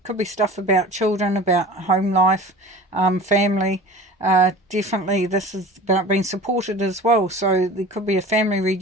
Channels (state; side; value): normal; both; correlation 0.38